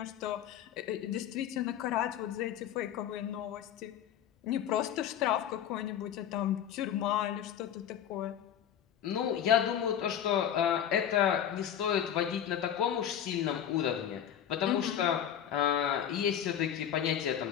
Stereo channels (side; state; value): right; quieter; 9.7 dB